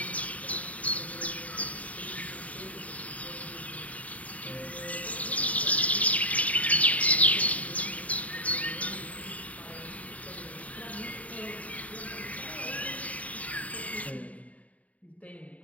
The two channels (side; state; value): right; late; 0.069 ms